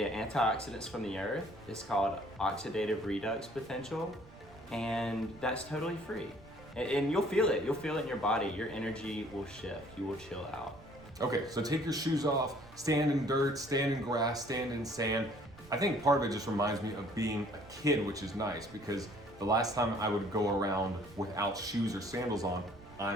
antioxidants from the earth. It's called oxidative redux potential, and that's totally free. And you'll feel it. You'll feel it in your body. Your energy will shift. You will chill out. Okay, so take your shoes off, stand in dirt, stand in grass, stand in sand. I think part of it just reminds me of being a kid, which is nice because the last time I would go around without shoes or sandals on,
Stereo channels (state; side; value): noise; right; rumble, 22 dB below the sound